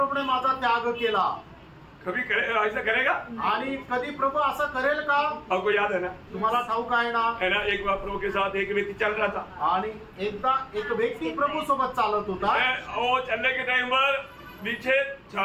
माझा त्याग केला. कभी ऐसा करेगा? आणि कधी प्रभू असं करेल का? आपको याद है ना, तुम्हाला ठाऊक आहे ना, है ना, एक बार प्रभु के साथ एक व्यक्ति चल रहा था आणि एकदा एक व्यक्ती प्रभू सोबत चालत होता वो चलने के टाइम पर नीचे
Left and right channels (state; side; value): identical; both; correlation 1.00